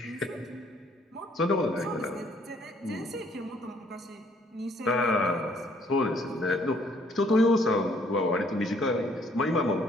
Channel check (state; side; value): normal; both; correlation 0.64